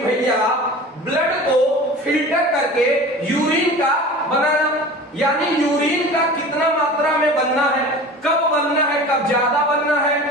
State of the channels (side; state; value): both; normal; correlation 0.37